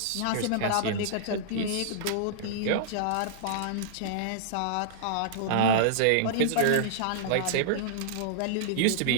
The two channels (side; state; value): both; different; correlation -0.02